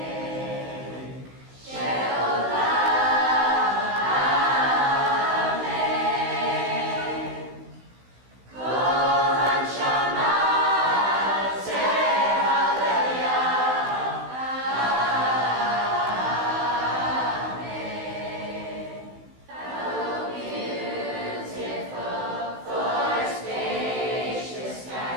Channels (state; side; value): late; left; 16 ms